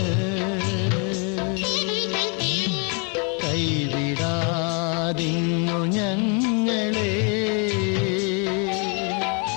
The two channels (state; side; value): quieter; right; 36.3 dB